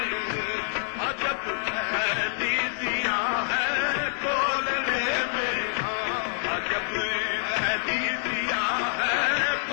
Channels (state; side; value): silent; right; digital silence